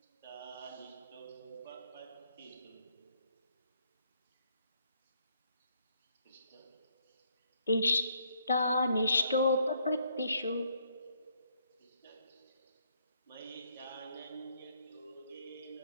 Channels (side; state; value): both; inverted; correlation -0.71